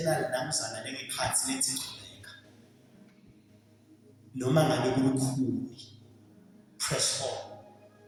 namzana lengekhathi lethi chubeka. Noma ngabe kulukhuni. Press on.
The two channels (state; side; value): identical; both; correlation 1.00